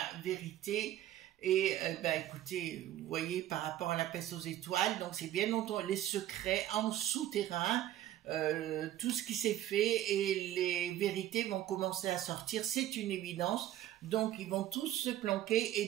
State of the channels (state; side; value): quieter; left; 13.0 dB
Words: vérité. Et écoutez, vous voyez, par rapport à la peste aux étoiles, donc c'est bien longtemps les secrets en souterrain, tout ce qui s'est fait, et les vérités vont commencer à sortir, c'est une évidence. Donc ils vont tous se planquer et